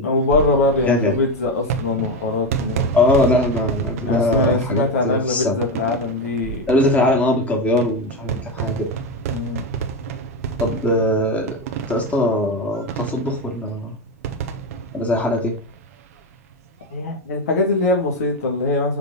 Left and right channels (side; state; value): both; normal; correlation 0.13